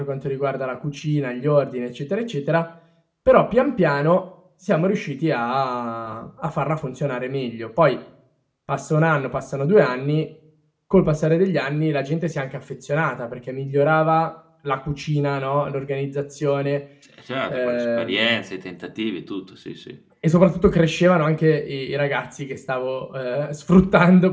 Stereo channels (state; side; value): identical; both; correlation 1.00